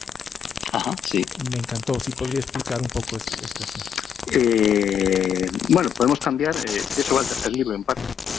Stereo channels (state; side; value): quieter; right; 7.9 dB